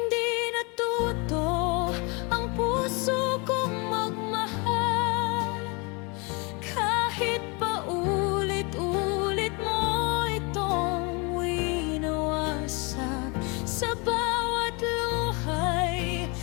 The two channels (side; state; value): right; quieter; 29.9 dB